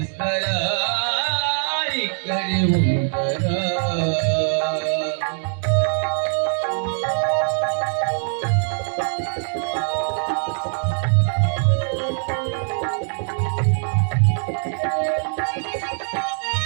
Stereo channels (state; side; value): silent; left; 64 dB below the other